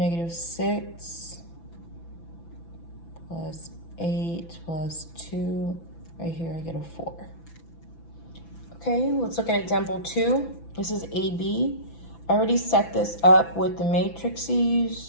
plus 8 plus 2, right here I get a 4. Okay, let's look at example 2. This is AB. I already set this up with the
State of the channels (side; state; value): right; late; 6.0 ms